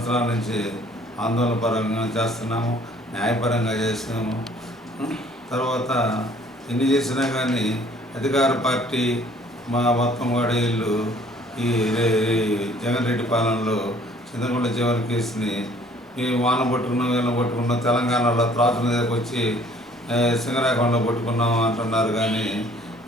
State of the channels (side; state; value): both; normal; correlation 0.57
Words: నుంచి ఆందోళన పరంగా చేస్తున్నాము. న్యాయపరంగా చేసినాము. తర్వాత ఎన్ని చేసినా కానీ అధికార పార్టీ మా మొత్తం కూడా వీళ్ళు ఈ జగన్ రెడ్డి పాలనలో చింతకుంట జీవన కేసుని మేము వాన పట్టుకున్నాం వీళ్ళని పట్టుకున్నాం, తెలంగాణలో త్రాసుల మీదకి వచ్చి సింగరాకొండలో పట్టుకున్నాం అంటున్నారు. కానీ